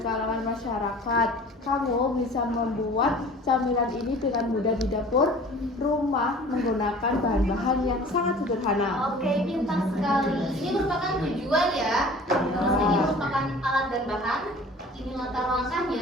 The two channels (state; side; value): normal; both; correlation 0.45